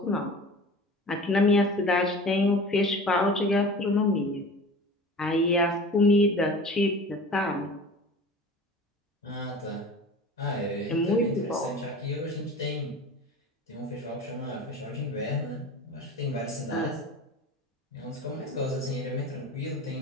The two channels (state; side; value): normal; both; correlation 0.38